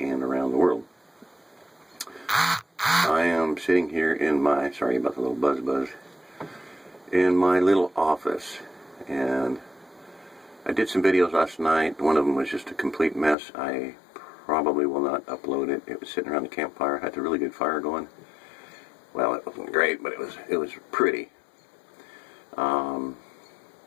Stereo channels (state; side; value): drops out; right; at 13.4 s